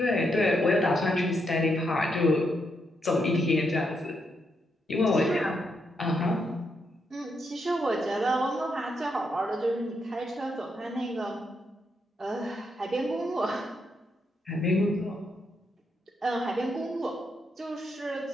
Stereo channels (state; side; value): normal; both; correlation 0.80